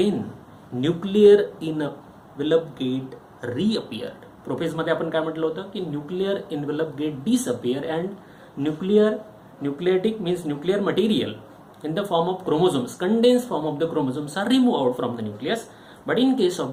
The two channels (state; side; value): identical; both; correlation 1.00